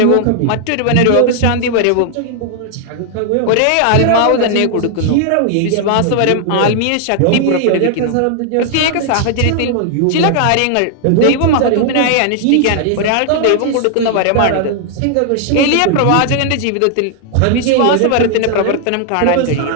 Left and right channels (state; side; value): different; both; correlation 0.00